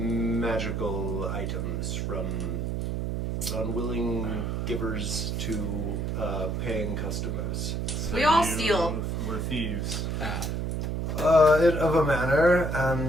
items from unwilling givers to paying customers. So We all you steal. We're thieves. Of a manner,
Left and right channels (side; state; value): right; noise; hum, 1 dB below the sound